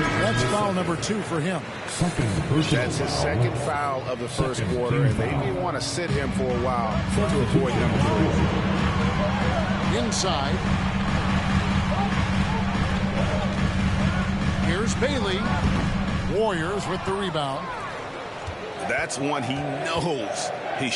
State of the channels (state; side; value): identical; both; correlation 1.00